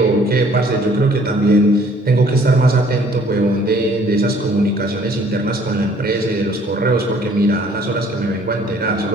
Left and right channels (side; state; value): both; normal; correlation 0.58